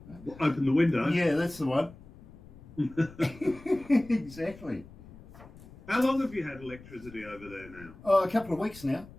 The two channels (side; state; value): left; noise; rumble, 20 dB below the sound